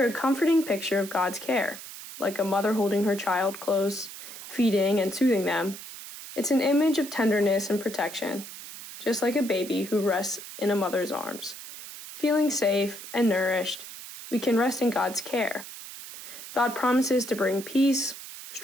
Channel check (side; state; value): right; noise; hiss, 13 dB below the sound